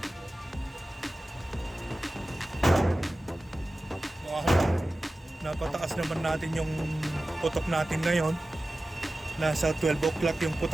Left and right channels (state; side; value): normal; both; correlation 0.95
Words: Napataas naman natin yung putok natin ngayon. Nasa 12 o'clock yung